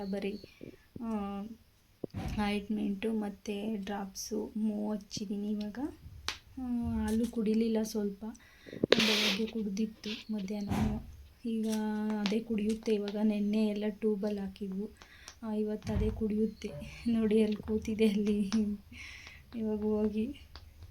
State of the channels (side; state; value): both; identical; correlation 1.00